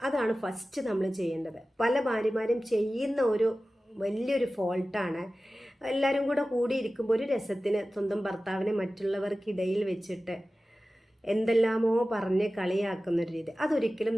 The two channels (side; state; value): both; normal; correlation 0.96